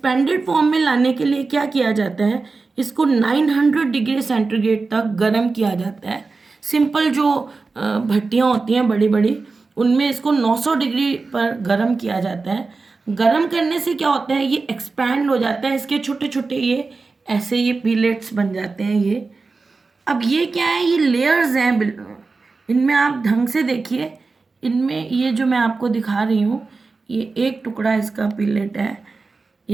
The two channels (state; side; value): quieter; left; 4.0 dB